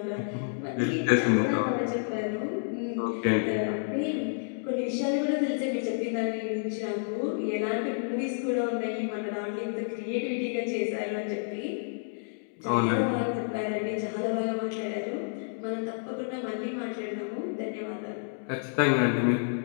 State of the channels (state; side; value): silent; right; digital silence